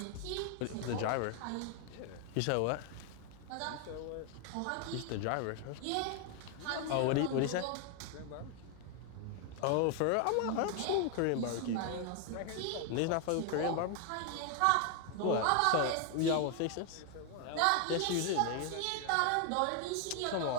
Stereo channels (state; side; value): different; both; correlation 0.00